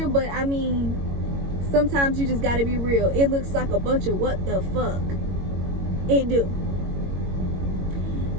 but I mean, sometimes you just gotta be real. It looks like a bunch of what the fuck. It do.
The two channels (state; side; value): late; left; 22 ms